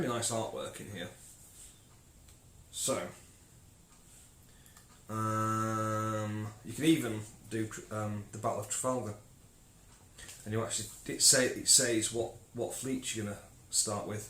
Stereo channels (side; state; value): both; identical; correlation 1.00